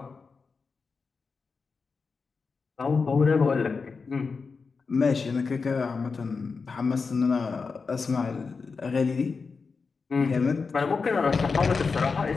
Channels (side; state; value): right; quieter; 4.8 dB